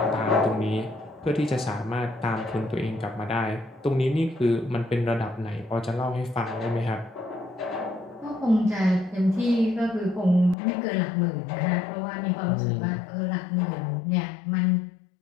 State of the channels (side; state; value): right; drops out; at 10.6 s